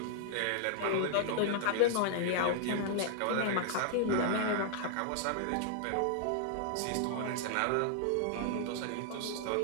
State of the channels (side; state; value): both; different; correlation -0.01